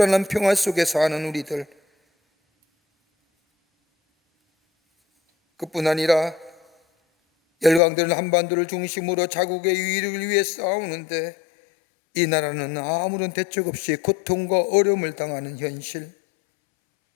평화 속에 사는 우리들, 그뿐 아니라 열강들은 한반도를 중심으로 자국의 유일을 위해 싸우는데 이 나라는 아무런 대책 없이 고통과 어려움을 당하는 현실,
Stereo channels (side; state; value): right; drops out; at 7.8 s